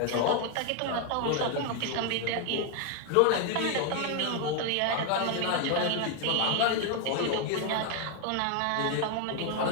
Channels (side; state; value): both; different; correlation 0.01